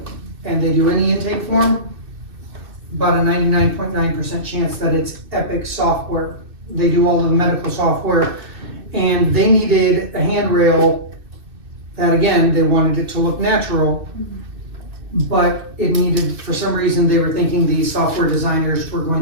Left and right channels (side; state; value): left; late; 2.6 ms